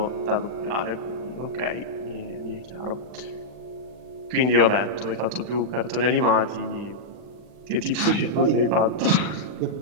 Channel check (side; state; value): left; late; 40 ms